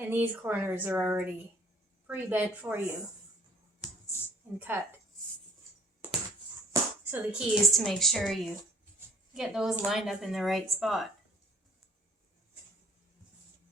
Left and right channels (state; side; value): normal; both; correlation 0.57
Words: these corners are already pre-bent for you and cut. So the key is to make sure you get those lined up in the right spot.